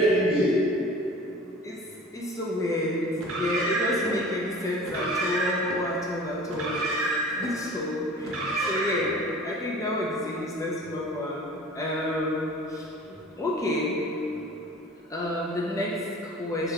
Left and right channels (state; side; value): normal; both; correlation 0.43